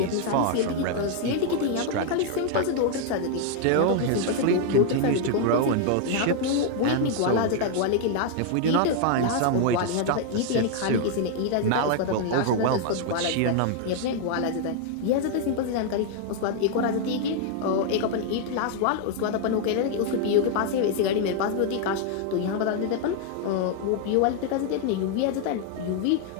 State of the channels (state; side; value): different; both; correlation 0.00